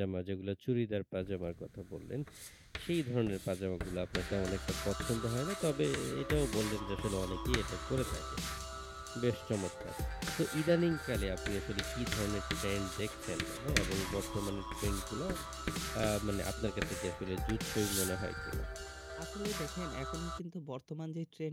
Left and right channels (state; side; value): identical; both; correlation 1.00